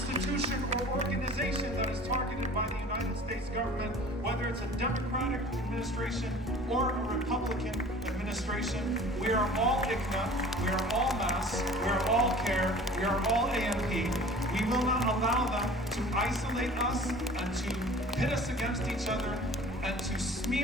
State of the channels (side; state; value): both; normal; correlation 0.45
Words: or organization that is targeted by the United States government, whether it's a Democratic administration or a Republican administration. We are all ICNA, we are all MAS, we are all CARE, we are all AMP. We will not allow them to isolate us and to pit us against each other and to